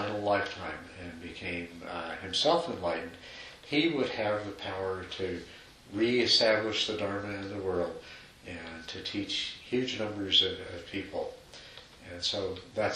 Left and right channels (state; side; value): identical; both; correlation 1.00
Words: lifetime and became himself enlightened, he would have the power to re-establish the Dharma in the world and to teach huge numbers of people. And so